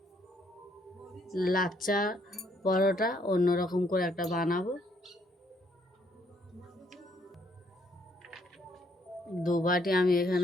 লাচ্চা পরোটা অন্যরকম করে একটা বানাবো। 2 বাটি আমি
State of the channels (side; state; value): both; normal; correlation 0.69